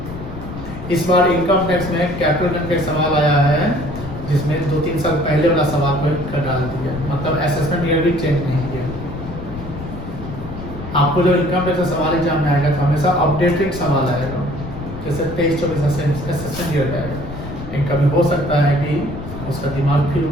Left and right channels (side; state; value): left; noise; rumble, 10 dB below the sound